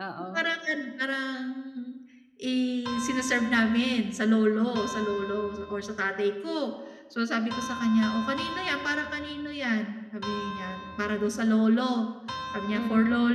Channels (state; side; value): identical; both; correlation 1.00